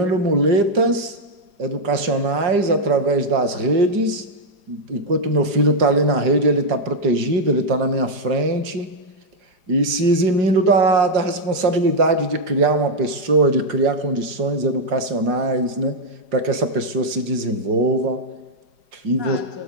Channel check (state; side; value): late; left; 4.9 ms